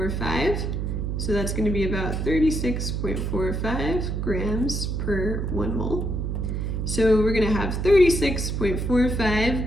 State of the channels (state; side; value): noise; right; hum, 1 dB below the sound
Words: So that's going to be about 36.45 grams per 1 mole. So we're going to have 36.45